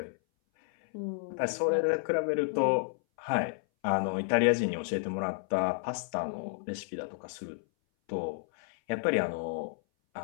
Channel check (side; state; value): right; silent; 57 dB below the other